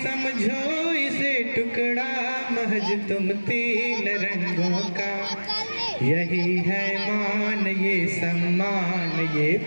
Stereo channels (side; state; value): both; inverted; correlation -1.00